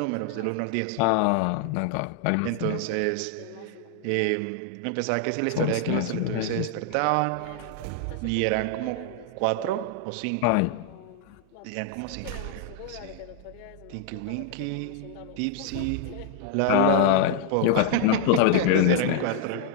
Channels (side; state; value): both; different; correlation 0.00